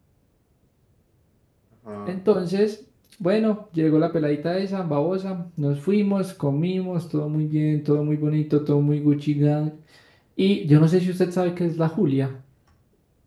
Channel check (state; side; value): identical; both; correlation 1.00